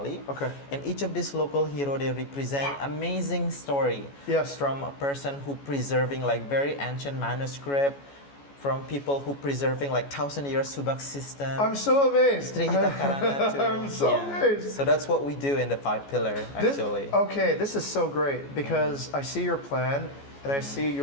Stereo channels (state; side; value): late; right; 14 ms